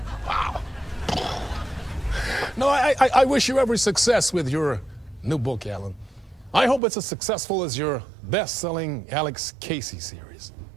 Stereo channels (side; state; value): left; drops out; at 6.8 s